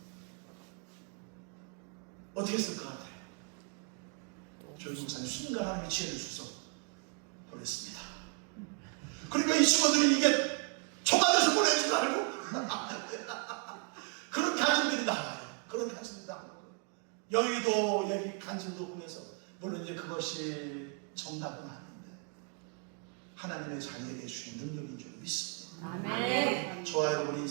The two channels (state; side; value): quieter; left; 37.2 dB